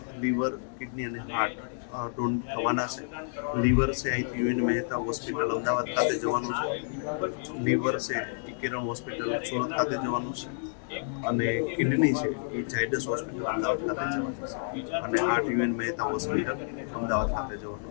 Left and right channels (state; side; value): silent; right; digital silence